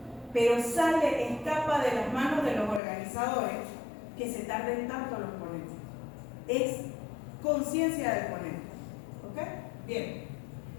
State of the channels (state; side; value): drops out; right; at 2.8 s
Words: pero escapa de las manos de los organizadores que se tarden tanto los ponentes. Es conciencia del ponente. ¿Ok? Bien.